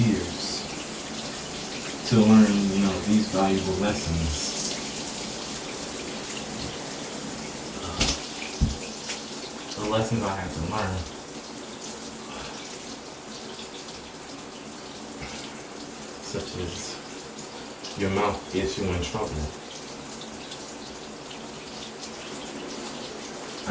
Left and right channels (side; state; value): both; identical; correlation 1.00